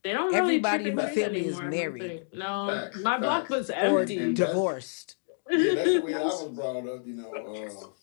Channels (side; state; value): right; silent; digital silence